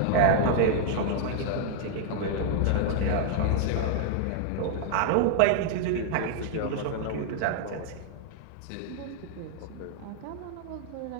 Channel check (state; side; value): different; both; correlation 0.00